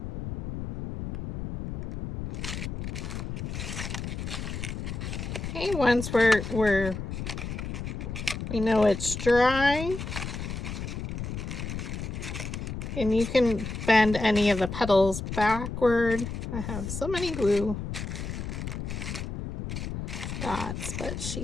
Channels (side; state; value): left; noise; rumble, 5 dB below the sound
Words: Okay, once we know it's dry, and you can bend any of the petals backward. I have so many glue dots, but